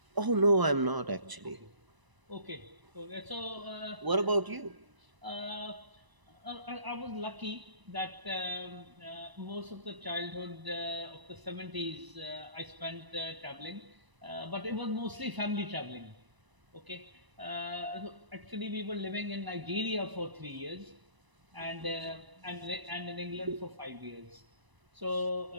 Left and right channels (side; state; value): left; late; 1.0 ms